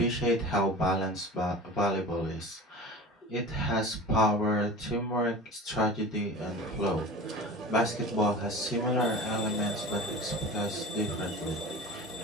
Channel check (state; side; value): normal; both; correlation 0.35